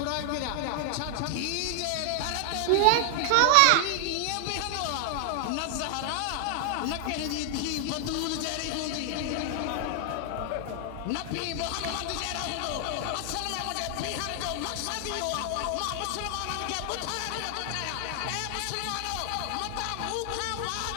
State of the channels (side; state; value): both; different; correlation 0.00